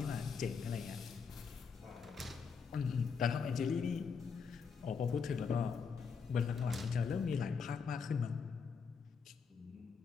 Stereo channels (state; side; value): quieter; right; 5.8 dB